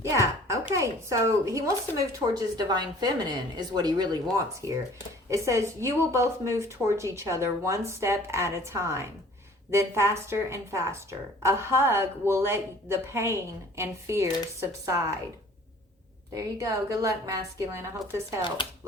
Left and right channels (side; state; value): both; normal; correlation 0.51